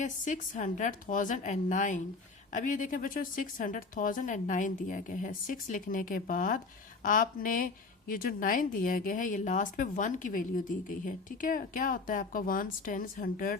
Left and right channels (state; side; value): quieter; right; 4.0 dB